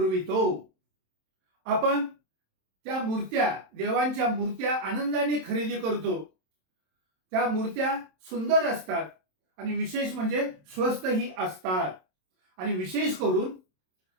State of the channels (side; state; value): left; late; 27 ms